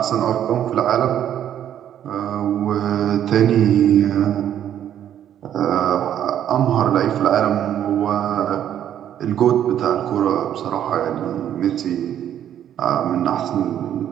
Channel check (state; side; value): quieter; left; 10.4 dB